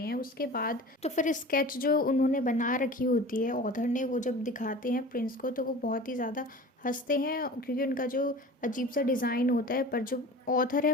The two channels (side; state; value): both; normal; correlation 0.38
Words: हैं। उसके बाद तो फिर स्केच जो उन्होंने बना रखी होती है ऑथर ने, वो जब दिखाते हैं प्रिंस को तो वो बहुत ही ज़्यादा हंसते हैं, क्योंकि उनका जो अजीब सा डिज़ाइन होता है। पर जो ऑथर है